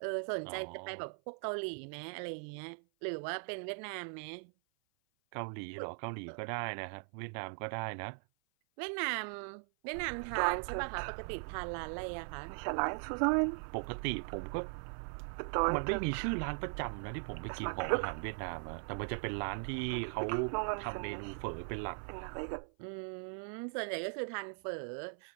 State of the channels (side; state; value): left; silent; 52 dB below the other